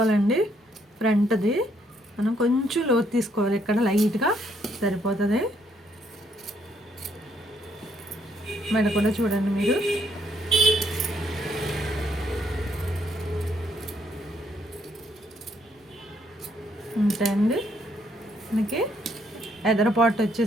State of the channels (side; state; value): both; normal; correlation 0.70